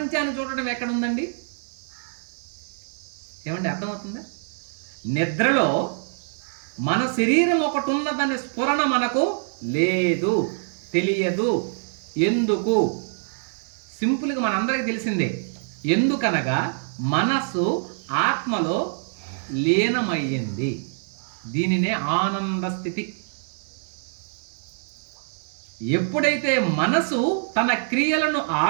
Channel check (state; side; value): silent; left; digital silence